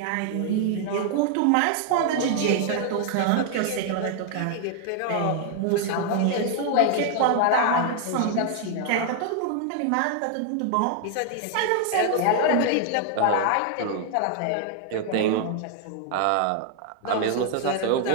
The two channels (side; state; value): both; different; correlation 0.00